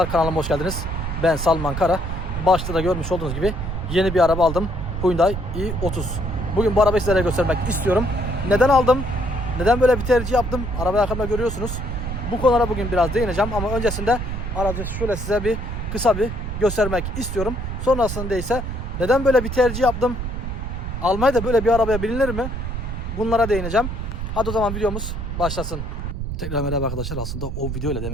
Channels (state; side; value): noise; right; rumble, 5 dB below the sound